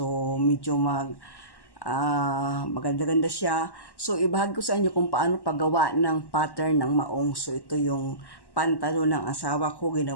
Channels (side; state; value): right; late; 1.1 ms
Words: medyo maganda-ganda siya. So ibahagi ko sa inyo kung paano paggawa ng pattern ng maong. So ito yung pantalon ng asawa ko,